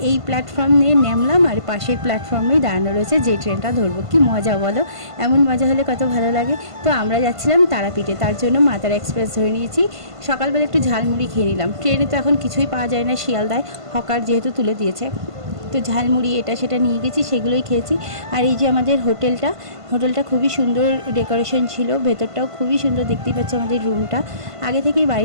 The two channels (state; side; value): late; left; 1.5 ms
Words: এই প্ল্যাটফর্ম নিয়ে নামলাম আর পাশের প্ল্যাটফর্মেই দাঁড়ানো রয়েছে যে ট্রেনটা ধরবো। কি মজা বলো, এমন মজা হলে কত ভালো লাগে। তো আমরা যাচ্ছিলাম তারাপীঠে, তার জন্য মা তারা এক্সপ্রেস ধরে নিয়েছি। সকালবেলা একটু ঝালমুড়ি খেয়ে নিলাম। ট্রেনে তো এখন কিছুই পাওয়া যায় না শিয়ালদায়, হকার যেহেতু তুলে দিয়েছে। তো ঝালমুড়ি এটা সেটা নিয়ে গেছি, সেগুলোই খেয়েছি। আর এই যে আমাদের হোটেলটা খুবই সুন্দর ডেকোরেশন ছিল, ভেতরটাও খুবই সুন্দর। দেখতেই পাচ্ছ আমাদের রুমটা আগে থেকেই